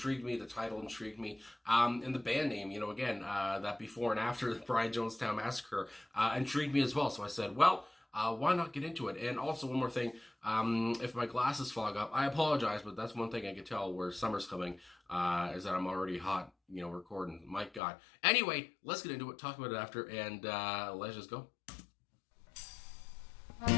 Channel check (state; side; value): drops out; right; at 17.8 s